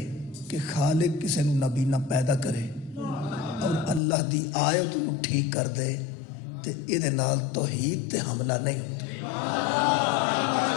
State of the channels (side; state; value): right; drops out; at 4.0 s